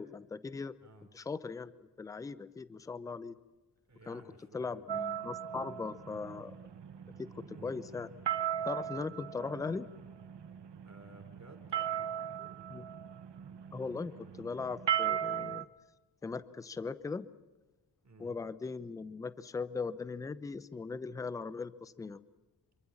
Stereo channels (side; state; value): both; normal; correlation 0.34